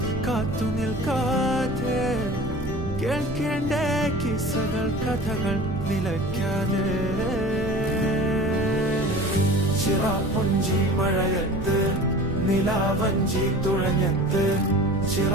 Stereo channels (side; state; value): right; noise; rumble, 7 dB below the sound